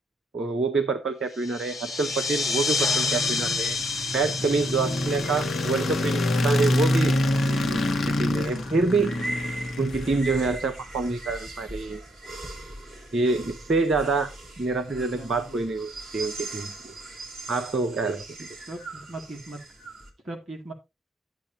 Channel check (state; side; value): normal; both; correlation 0.71